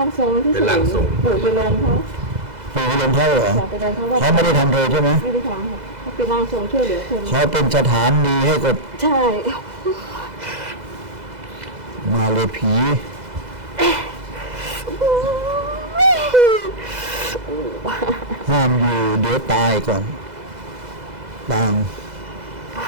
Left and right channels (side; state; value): left; late; 2.0 ms